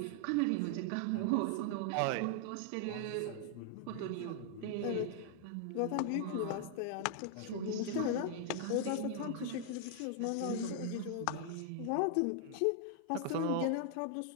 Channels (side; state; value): both; different; correlation 0.00